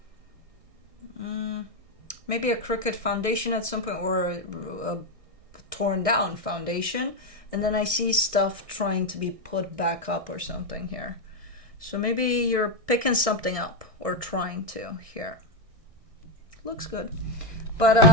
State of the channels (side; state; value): left; late; 1.6 ms